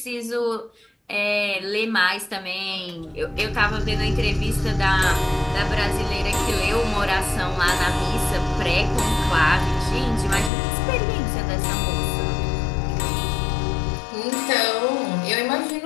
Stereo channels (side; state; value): right; drops out; at 10.5 s